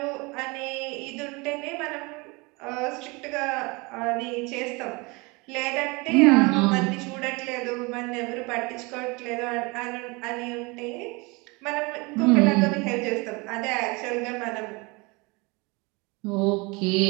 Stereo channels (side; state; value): left; quieter; 26.7 dB